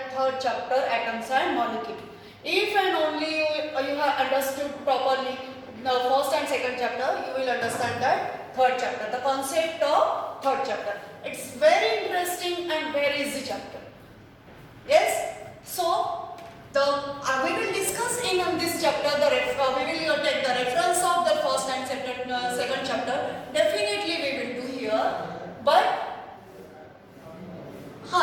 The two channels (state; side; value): identical; both; correlation 1.00